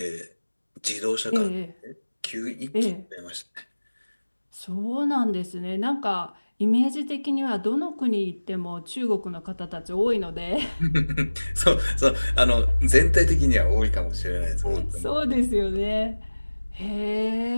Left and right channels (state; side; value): inverted; both; correlation -1.00